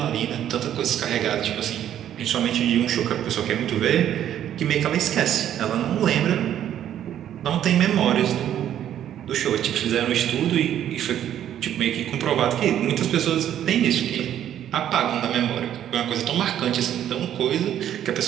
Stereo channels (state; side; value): quieter; left; 10.8 dB